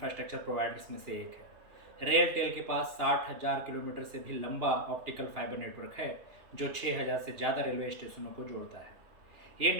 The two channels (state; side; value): late; left; 2.8 ms